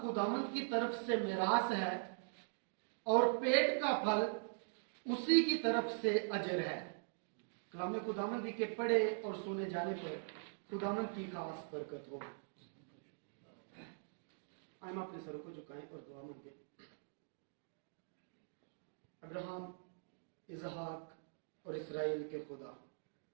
خداوند کی طرف سے میراث ہے اور پیٹ کا پھل اسی کی طرف سے اجر ہے۔ کلام خداوندی کے پڑھے اور سنے جانے پر خداوند کی خاص برکت ہو۔ ہم اپنے سروں کو جھکائیں اور دعا مانگیں۔ ابراہیم، اسحاق اور اسرائیل کے خدا،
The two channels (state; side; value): silent; left; digital silence